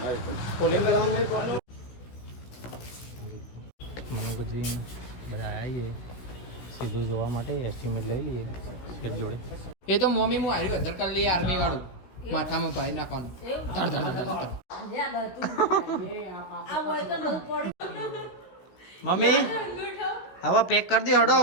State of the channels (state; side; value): late; right; 16 ms